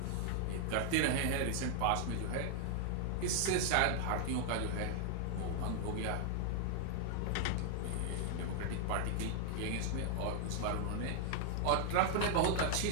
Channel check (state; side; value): different; both; correlation 0.00